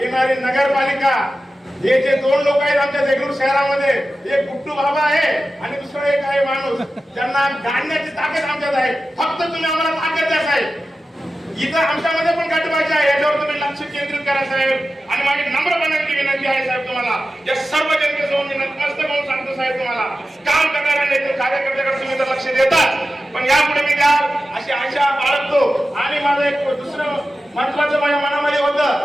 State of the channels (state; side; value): normal; both; correlation 0.93